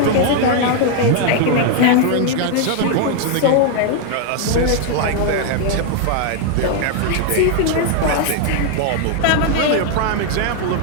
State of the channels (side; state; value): both; different; correlation 0.00